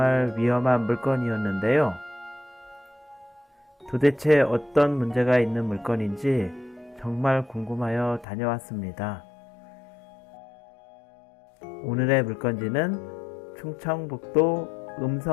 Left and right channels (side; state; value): right; drops out; at 8.2 s